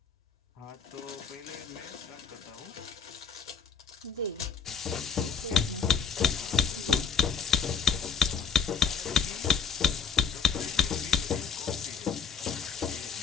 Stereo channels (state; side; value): quieter; right; 6.1 dB